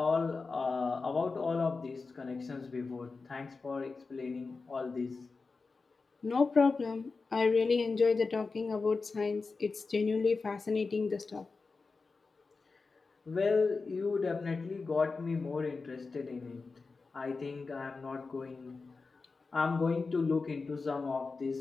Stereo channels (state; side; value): quieter; right; 4.2 dB